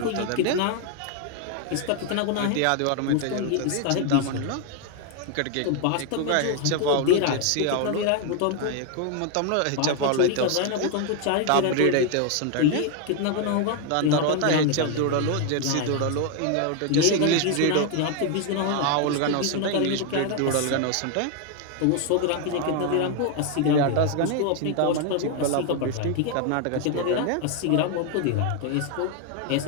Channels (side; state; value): both; different; correlation 0.01